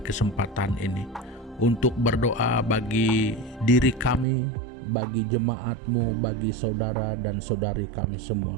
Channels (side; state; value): left; drops out; at 4.2 s